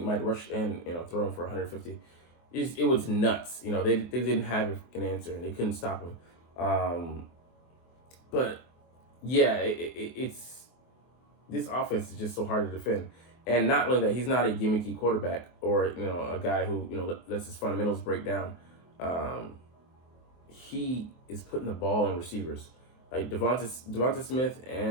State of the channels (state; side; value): late; right; 24 ms